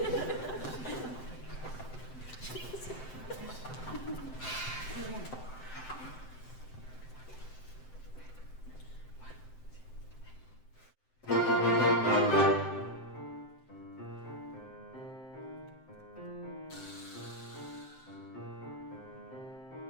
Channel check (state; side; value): late; right; 7.7 ms